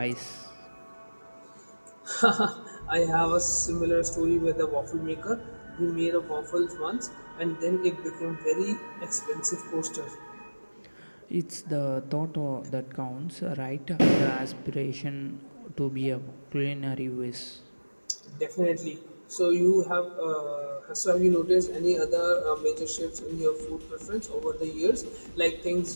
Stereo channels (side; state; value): both; inverted; correlation -1.00